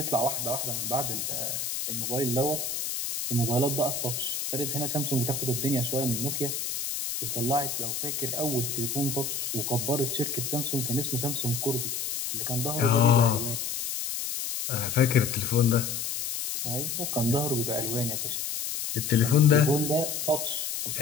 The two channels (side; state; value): left; noise; hiss, 3 dB below the sound